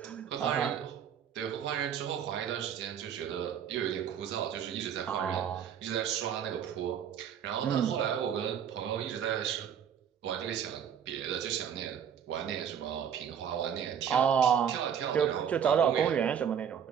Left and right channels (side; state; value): left; quieter; 8.4 dB